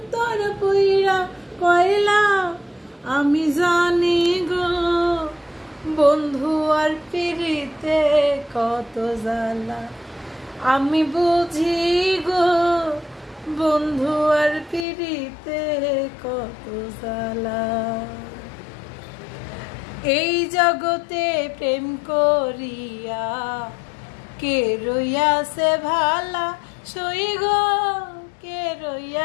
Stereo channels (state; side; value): drops out; right; at 14.9 s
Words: পুইরা কয়লা। আমি জানি গো বন্ধু আর পিরিতে কত জ্বালা। আমি বুঝি গো বন্ধু আর পিরিতে কত জ্বালা। এই জগতে প্রেম করিয়া কে রইয়াছে ভালা। সই গো কে